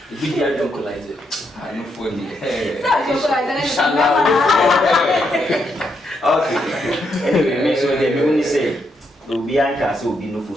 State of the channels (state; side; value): normal; both; correlation 0.79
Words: e be the adocolizer I no for the okay anyway me so they me say obi anka say obi no